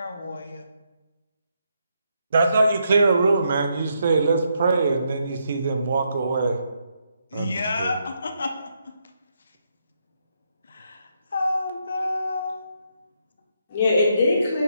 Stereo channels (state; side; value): inverted; both; correlation -0.78